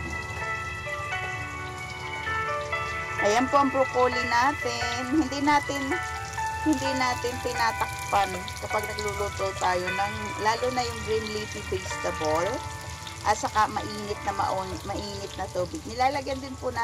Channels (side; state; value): both; identical; correlation 1.00